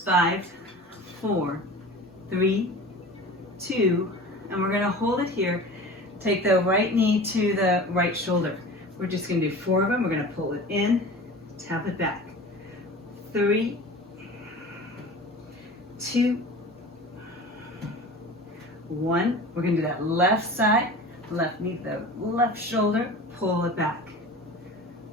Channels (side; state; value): both; normal; correlation 0.37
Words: 5, 4, 3, 2, and we're going to hold it here. Take the right knee to the right shoulder. We're just going to do 4 of them. We're going to pull it in, tap it back. 3, 2, 1. We're going to do that left side, left knee to the left shoulder, pull it back.